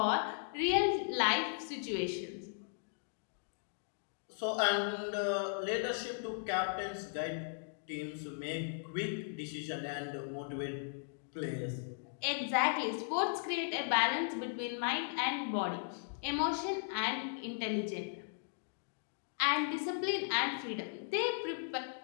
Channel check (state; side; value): silent; right; digital silence